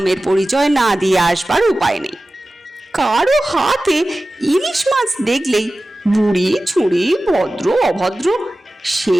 পরিচয় না দিয়ে আসবার উপায় নেই। কারো হাতে ইলিশ মাছ দেখলেই বুড়ি ছুড়ি ভদ্র অভদ্র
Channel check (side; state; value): both; normal; correlation 0.96